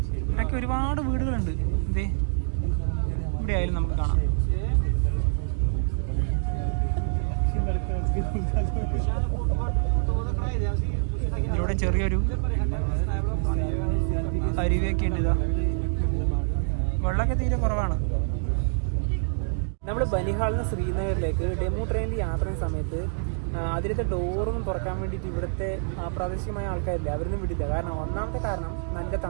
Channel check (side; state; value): left; silent; digital silence